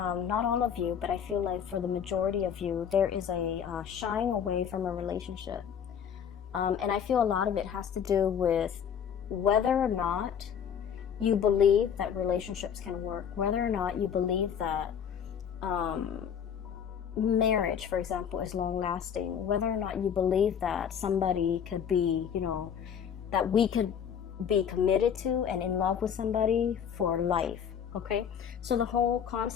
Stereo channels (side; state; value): right; quieter; 8.0 dB